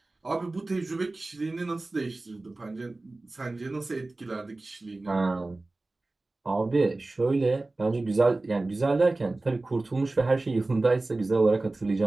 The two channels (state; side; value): quieter; left; 3.1 dB